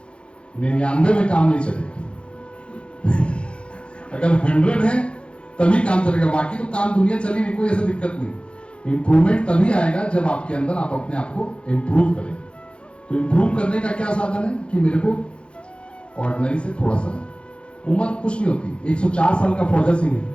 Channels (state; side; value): late; right; 0.057 ms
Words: 99 में काम नहीं चलेगा। अगर 100 है तभी काम चलेगा, बाकी तो काम दुनिया चली नहीं, कोई ऐसा दिक्कत नहीं। इंप्रूवमेंट तभी आएगा जब आपके अंदर आप अपने आप को इंप्रूव करें। तो इंप्रूव करने का क्या साधन है कि मेरे को ऑर्डिनरी से थोड़ा सा, उम्र कुछ नहीं होती। 104 साल का फौजा सिंह है,